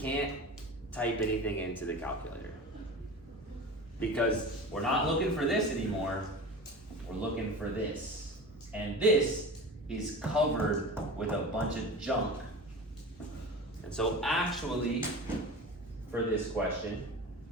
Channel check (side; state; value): both; normal; correlation 0.33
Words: type anything into the calculator because we're not looking for this anymore. We're looking for this. And this is covered with a bunch of junk. And so actually, for this question,